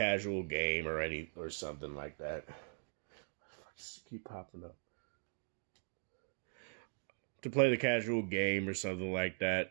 game or something like that. Just keep popping up. To play the casual game or something like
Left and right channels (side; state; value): left; silent; digital silence